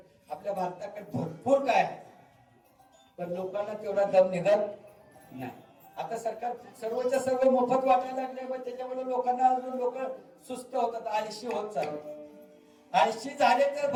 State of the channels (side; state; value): both; identical; correlation 1.00